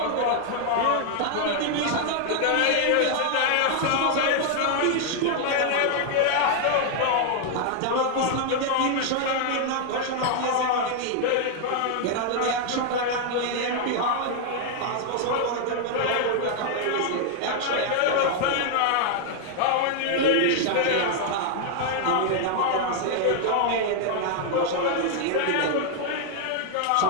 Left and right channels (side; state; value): both; different; correlation 0.00